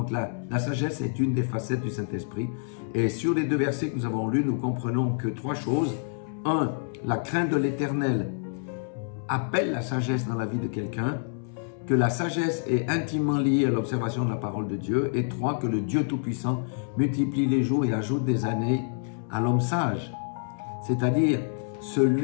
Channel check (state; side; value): silent; right; 60 dB below the other